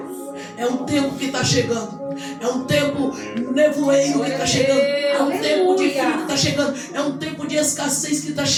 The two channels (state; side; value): identical; both; correlation 1.00